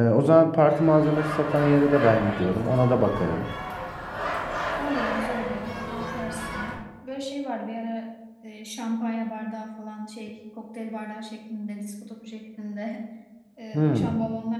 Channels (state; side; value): identical; both; correlation 1.00